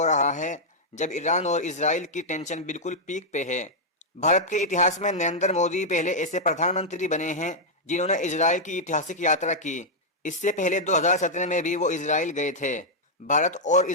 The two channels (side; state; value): both; normal; correlation -0.04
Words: रहा है जब ईरान और इजराइल की टेंशन बिल्कुल पीक पे है। भारत के इतिहास में नरेंद्र मोदी पहले ऐसे प्रधानमंत्री बने हैं जिन्होंने इजराइल की ऐतिहासिक यात्रा की। इससे पहले 2017 में भी वो इजराइल गए थे। भारत और